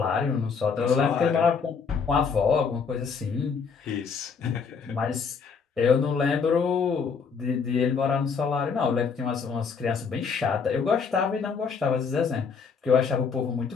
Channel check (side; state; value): right; quieter; 5.7 dB